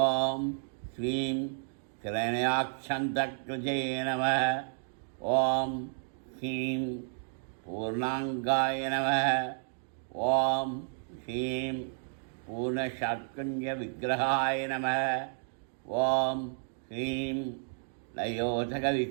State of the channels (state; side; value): silent; left; digital silence